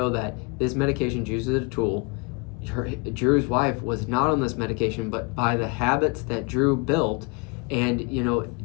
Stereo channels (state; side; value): quieter; right; 31.2 dB